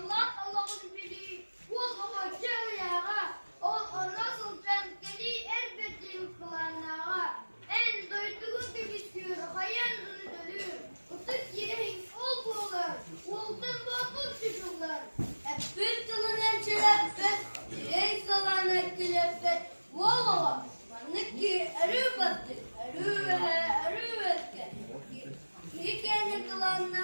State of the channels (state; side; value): inverted; both; correlation -1.00